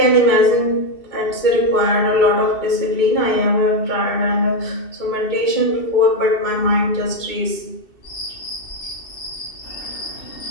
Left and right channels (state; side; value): late; right; 2.7 ms